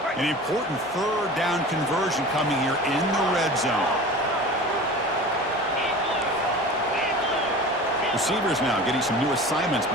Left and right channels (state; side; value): normal; both; correlation 0.37